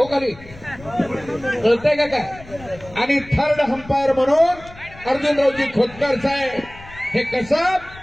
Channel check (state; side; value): noise; left; rumble, 19 dB below the sound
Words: खाली, कळतंय का काय? आणि थर्ड अंपायर म्हणून अर्जुनरावजी खोतकर साहेब. हे कसं